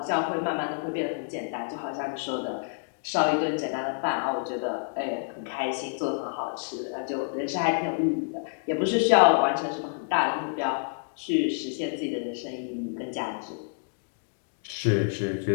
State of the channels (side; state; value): right; silent; digital silence